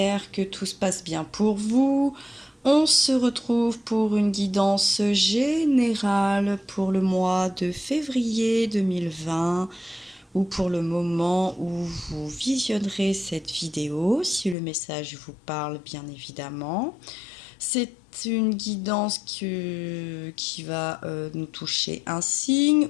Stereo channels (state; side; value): drops out; right; at 14.6 s